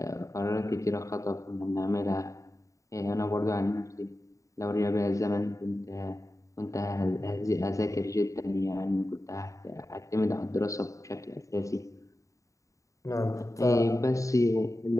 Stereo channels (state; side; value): late; right; 0.16 ms